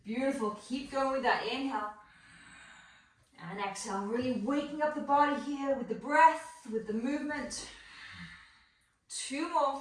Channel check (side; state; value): both; identical; correlation 1.00